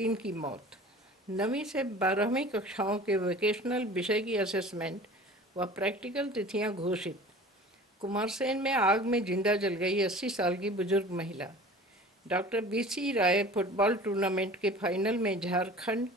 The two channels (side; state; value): both; normal; correlation 0.42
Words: की मौत। 9वीं से 12वीं कक्षाओं के वोकेशनल विषय की असेसमेंट व प्रैक्टिकल तिथियां घोषित। कुमारसेन में आग में जिंदा जल गई 80 साल की बुजुर्ग महिला। डॉक्टर BC राय फुटबॉल टूर्नामेंट के फाइनल में झारखंड